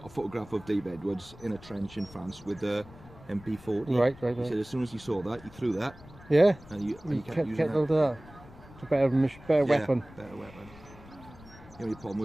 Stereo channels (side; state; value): left; noise; rumble, 20 dB below the sound